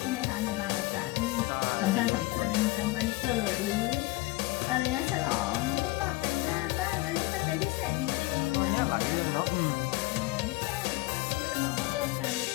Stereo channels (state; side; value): quieter; right; 20.9 dB